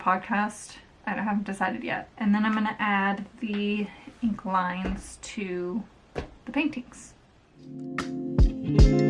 I haven't decided yet. And then I'm going to add the ink lines to the paintings.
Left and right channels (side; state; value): both; identical; correlation 1.00